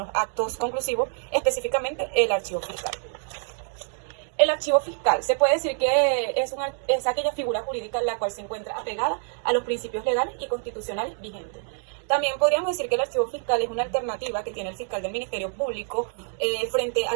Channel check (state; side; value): silent; left; 61 dB below the other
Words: actos conclusivos, específicamente el archivo fiscal. El archivo fiscal se puede decir que es aquella figura jurídica en la cual se encuentra apegada a los principios legales y constitucionales vigentes. También podríamos decir que el archivo fiscal es una alternativa que tiene el fiscal del Ministerio Público frente a